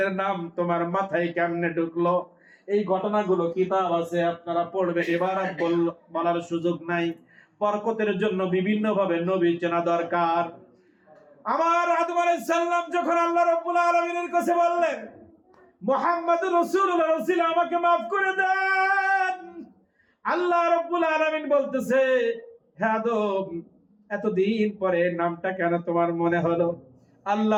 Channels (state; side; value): identical; both; correlation 1.00